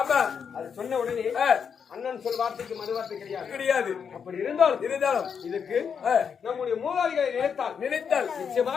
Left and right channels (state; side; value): quieter; right; 6.8 dB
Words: அது சொன்ன உடனே அண்ணன் சொல் வார்த்தைக்கு மறு வார்த்தை கிடையாது அப்படி இருந்தாலும் இதுக்கு நம்முடைய மூதாதிகளை நினைத்தால்